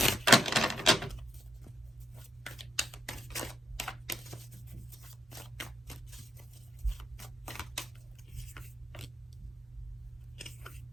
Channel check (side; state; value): both; normal; correlation 0.80